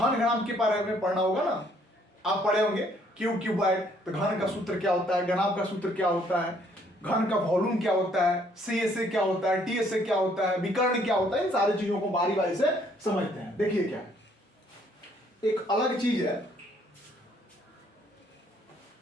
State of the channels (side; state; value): both; normal; correlation 0.65